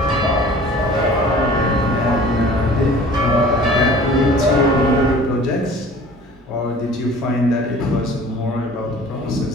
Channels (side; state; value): both; normal; correlation 0.46